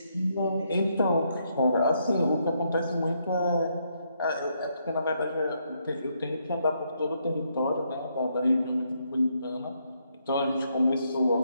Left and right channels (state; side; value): inverted; both; correlation -0.76